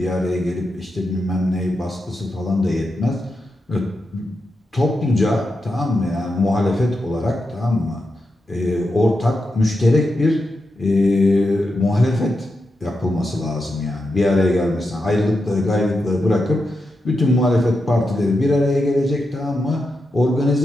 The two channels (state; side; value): normal; both; correlation 0.87